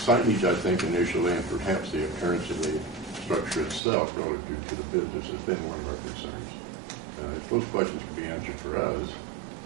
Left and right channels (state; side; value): drops out; left; at 3.8 s